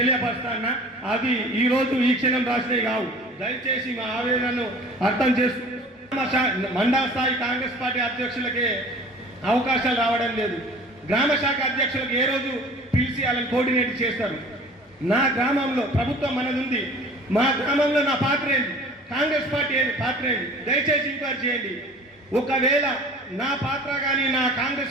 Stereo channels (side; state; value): both; normal; correlation 0.45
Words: అవి ఈ రోజు ఈ క్షణం రాసినవి కావు. దయచేసి మా ఆవేదనను అర్థం చేసుకుంటూ మండల స్థాయి కాంగ్రెస్ పార్టీ అధ్యక్షులకే అవకాశాలు రావడం లేదు. గ్రామ శాఖ అధ్యక్షులకు ఏ రోజు పిలిచి వాళ్ళని కోఆర్డినేట్ చేస్తారు. నా గ్రామంలో ప్రభుత్వం మనది ఉంది. మా గ్రామంలో నా పాత్ర ఏంటి, కాంగ్రెస్ పార్టీ ఏంటి పాత్ర ఏంటి, దయచేసి ఎంక్వైరీ చేయండి. ఒకవేళ నా పాత్ర కానీ నా